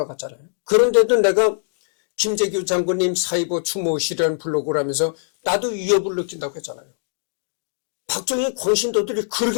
그런데도 내가 김재규 장군님 사이버 추모실이라는 블로그를 하면서 나도 위협을 느낀다고 했잖아요. 박정희 광신도들이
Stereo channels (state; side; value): silent; right; digital silence